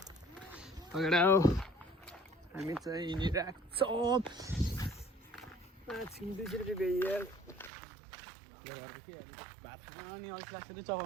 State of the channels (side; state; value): left; drops out; at 7.7 s